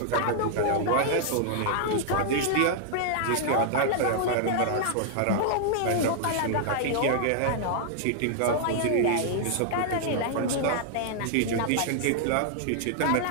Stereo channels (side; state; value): both; different; correlation -0.01